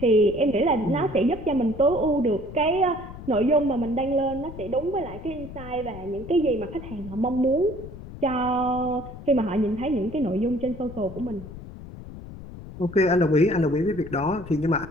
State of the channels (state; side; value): noise; left; rumble, 13 dB below the sound